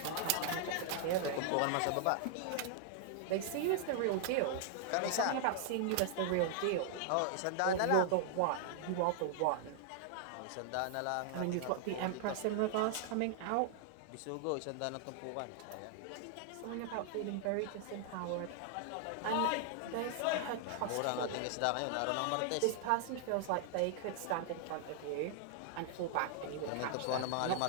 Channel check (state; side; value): different; both; correlation -0.01